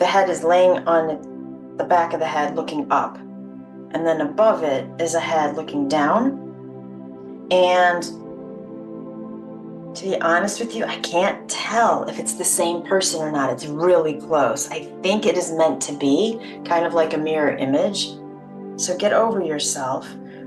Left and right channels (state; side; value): identical; both; correlation 1.00